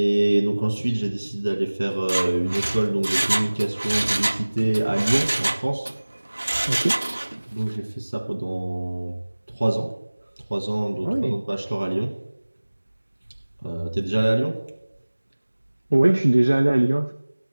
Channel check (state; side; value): inverted; both; correlation -1.00